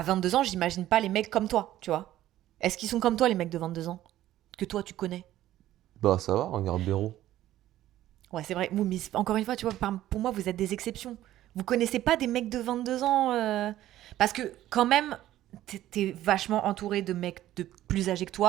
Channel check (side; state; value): left; quieter; 13.8 dB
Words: 22 ans, j'imagine pas les mecs comme toi, tu vois. Est-ce qu'ils sont comme toi les mecs de 22 ans que toi tu connais? Bah ça va, regarde Béraud. Ouais, c'est vrai. Mais encore une fois, tu vois, pour moi, vous êtes des exceptions. Vous connaissez pas des mecs de 22 ans parce que quand même t'es vachement entouré de mecs de plus âgés que